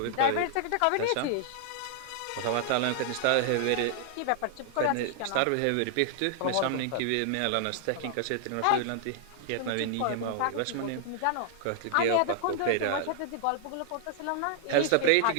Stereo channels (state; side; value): different; both; correlation -0.01